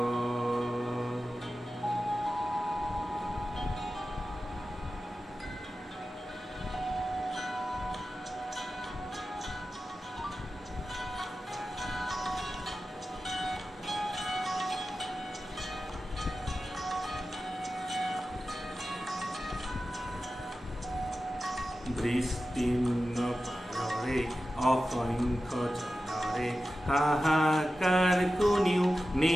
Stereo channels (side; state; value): both; normal; correlation 0.93